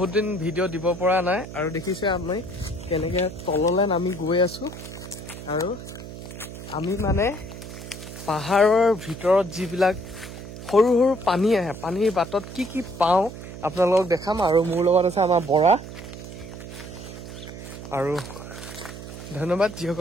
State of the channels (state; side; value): noise; right; hum, 12 dB below the sound